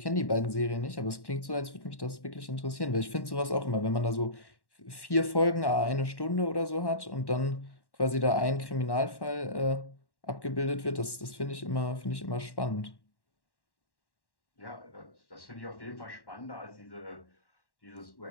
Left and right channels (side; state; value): right; late; 1.1 ms